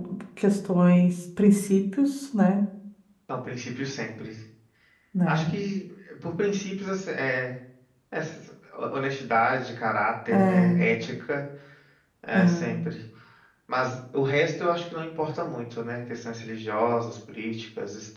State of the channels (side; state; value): both; identical; correlation 1.00